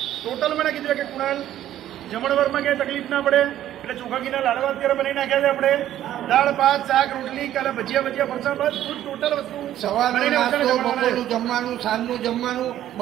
ટોટલ મને કીધું કે કુણાલ જમણવારમાં ક્યાંય તકલીફ ના પડે એટલે ચોખા ઘીના લાડવા અત્યારે બનાવી નાખ્યા છે આપણે. દાળ ભાત શાક રોટલી કાલે ભજીયા ફરસાણ બધું ટોટલ વસ્તુ સવારનો નાસ્તો, બપોરનું જમવાનું, સાંજનું જમવાનું,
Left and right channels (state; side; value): quieter; left; 12.3 dB